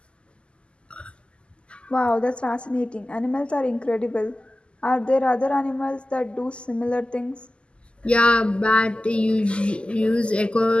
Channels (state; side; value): late; right; 0.052 ms